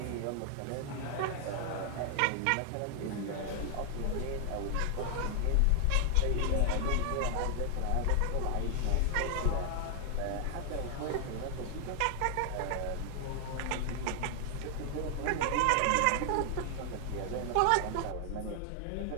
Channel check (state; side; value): different; both; correlation 0.00